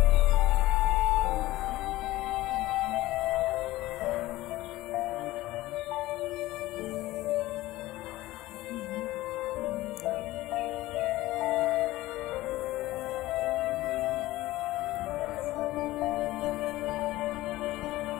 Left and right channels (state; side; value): quieter; right; 17.4 dB